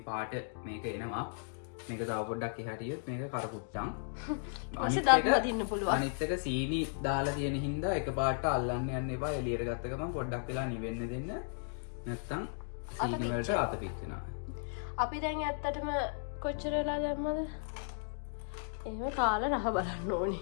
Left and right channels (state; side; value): silent; right; digital silence